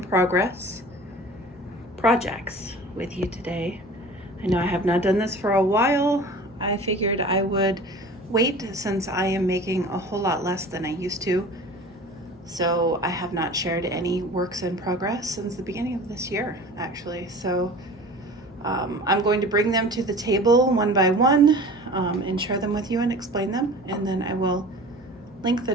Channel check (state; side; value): normal; both; correlation 0.40